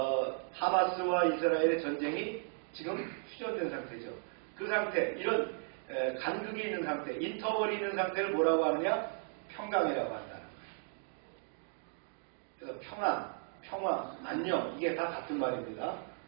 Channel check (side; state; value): left; silent; 54 dB below the other